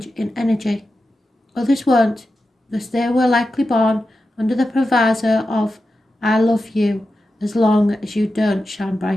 in energy. Others won't, because they were likely born under the proviso of, I love you as long as you don't shine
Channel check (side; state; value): both; normal; correlation 0.91